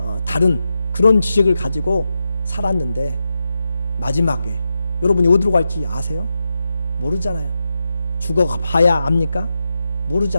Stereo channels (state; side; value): inverted; both; correlation -0.89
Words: 다른 그런 지식을 가지고 살았는데 마지막에 여러분이 어디로 갈지 아세요? 모르잖아요. 죽어봐야 압니까?